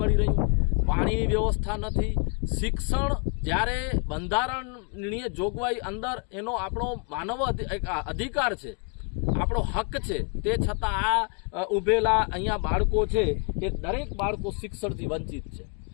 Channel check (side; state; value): right; quieter; 38.7 dB